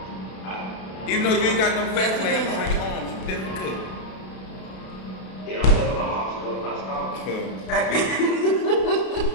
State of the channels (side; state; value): right; late; 32 ms